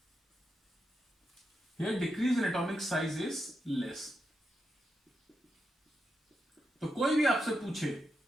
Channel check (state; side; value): normal; both; correlation 0.85